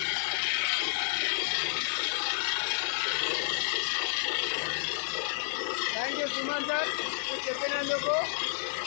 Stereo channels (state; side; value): silent; right; digital silence